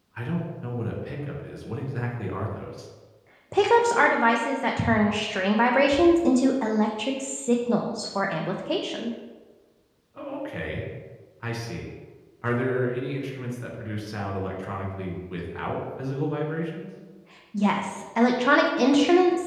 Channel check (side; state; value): both; identical; correlation 1.00